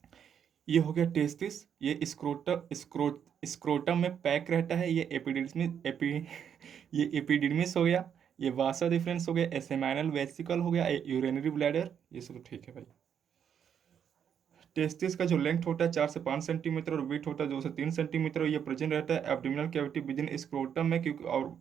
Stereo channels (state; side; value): quieter; left; 8.3 dB